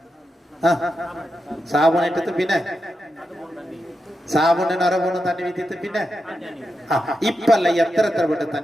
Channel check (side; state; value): both; normal; correlation 0.87